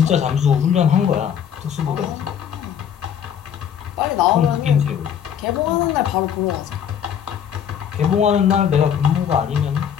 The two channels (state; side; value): quieter; right; 8.6 dB